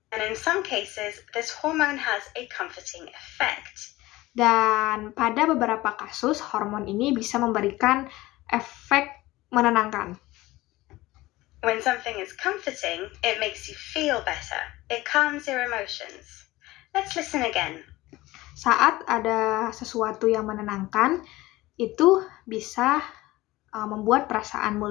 And in some cases, this hormone has a comforting effect. Dan pada beberapa kasus, hormon ini bisa memberikan efek menenangkan. When something is comforting, it makes you feel better. It calms your emotions. Let's listen again. Saat ada sesuatu yang menenangkan, itu bisa membuat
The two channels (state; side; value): quieter; right; 18.6 dB